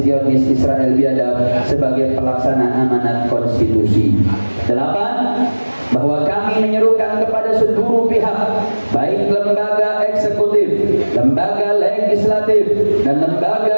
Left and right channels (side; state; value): both; inverted; correlation -1.00